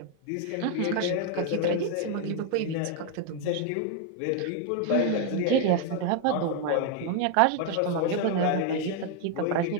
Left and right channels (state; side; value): different; both; correlation 0.01